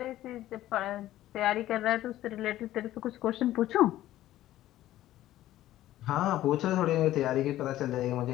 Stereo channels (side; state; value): right; quieter; 14.2 dB